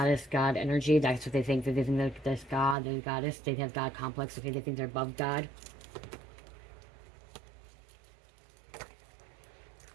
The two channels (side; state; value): left; drops out; at 2.8 s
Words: God energy. That's what they think. They think they're this God, they're goddess. They have God complex. Okay, they think they're above God.